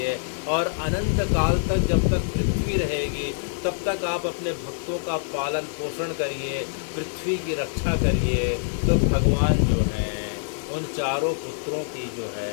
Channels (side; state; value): right; silent; digital silence